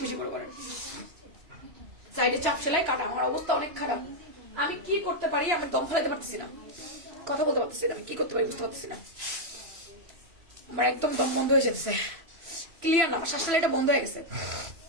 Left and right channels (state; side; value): late; left; 3.0 ms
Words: বেশি করে করেন। সাইডে চাপ সেলাই কাটা, আমার অবস্থা অনেক খারাপ। আমি কি করতে পারি, আমি দম ফেলাতে পারতেছি না, কথা বলতে পারতেছি না, আমি কি করতে পারি বুঝতে পারতেছি না। আমার একদম দম বন্ধ হয়ে যেতেছে, ক্লিয়ার না, আমার শ্বাস এটা বন্ধ হয়ে গেছে।